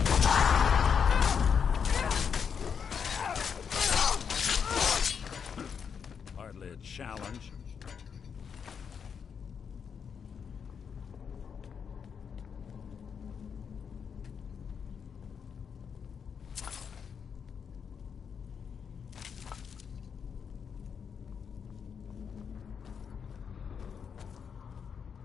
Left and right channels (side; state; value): right; quieter; 6.8 dB